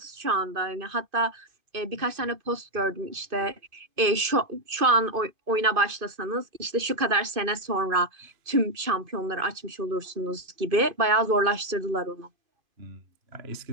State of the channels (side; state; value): left; late; 2.5 ms